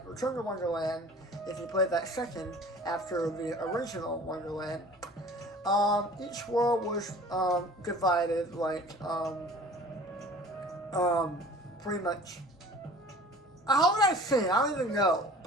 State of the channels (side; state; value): both; normal; correlation 0.45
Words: Return to Wonderland, if you played that second, after the original Wonderland, each world was, divided, like, pretty much. How would I say? I don't even know.